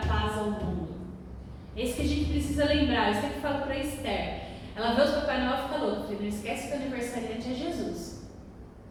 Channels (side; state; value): both; identical; correlation 1.00